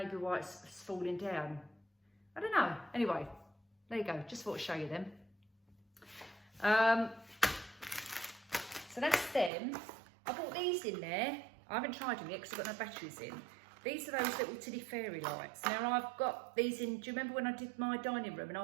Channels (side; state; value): left; drops out; at 9.5 s